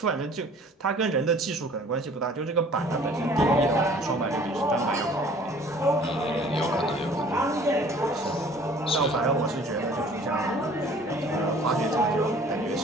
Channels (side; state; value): both; normal; correlation 0.51